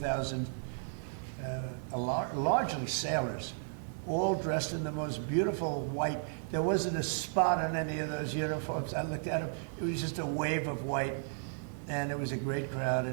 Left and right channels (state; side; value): silent; left; 55 dB below the other